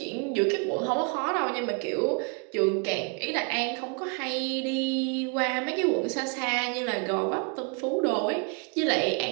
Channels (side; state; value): left; quieter; 36.4 dB